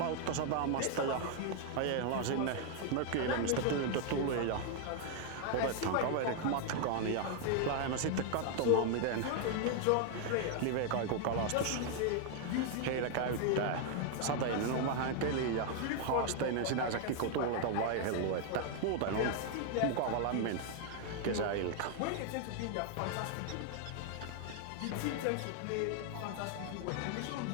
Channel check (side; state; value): both; different; correlation 0.00